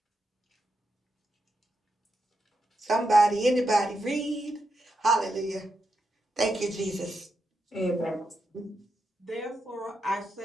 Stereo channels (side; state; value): both; normal; correlation 0.84